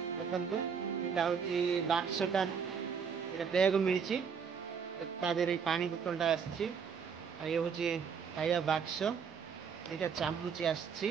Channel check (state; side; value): quieter; left; 6.5 dB